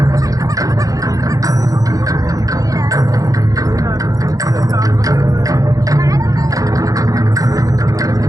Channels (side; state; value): left; late; 0.17 ms